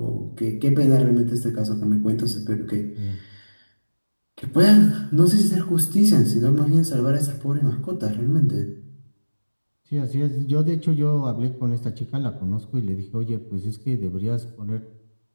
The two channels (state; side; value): inverted; both; correlation -1.00